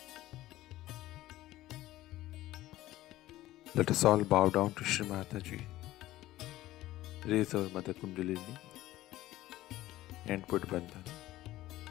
Let us all bow down to Shri Mataji, raise our Mother Kundalini, and put Bandhan.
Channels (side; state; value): right; quieter; 15.9 dB